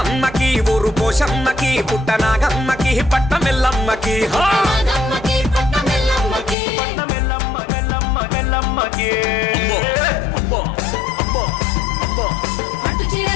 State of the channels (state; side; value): drops out; right; at 6.6 s